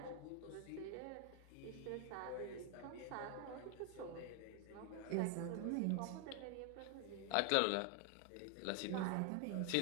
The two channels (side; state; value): both; different; correlation 0.00